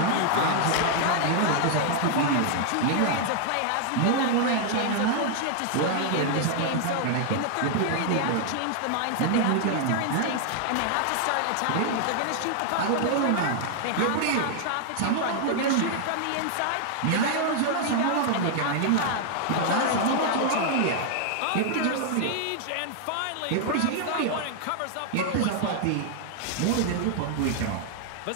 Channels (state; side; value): different; both; correlation 0.00